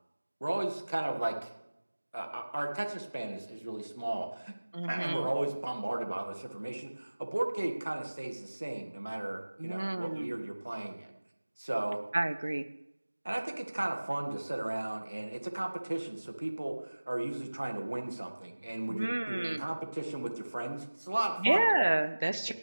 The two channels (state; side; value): inverted; both; correlation -1.00